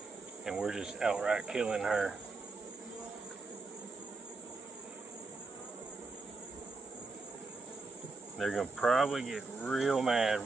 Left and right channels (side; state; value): left; quieter; 3.7 dB